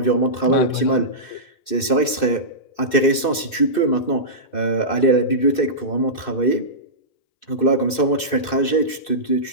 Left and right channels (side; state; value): right; late; 2.6 ms